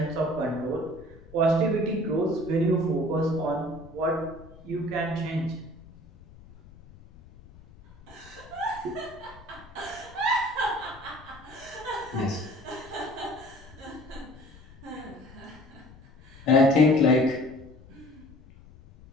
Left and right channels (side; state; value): left; noise; rumble, 22 dB below the sound